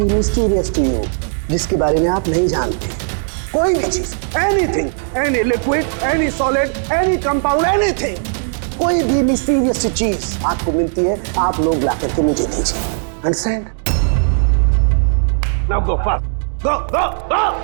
mysterious to you, जिसके बारे में आप नहीं जानते, कोई भी चीज, anything, any liquid, any solid, any compound, anything, कोई भी मिस्टीरियस चीज आपको मिलती है, आप लोग ला करके मुझे दीजिए। Understand? Now go fast, go go go.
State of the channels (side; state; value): left; silent; digital silence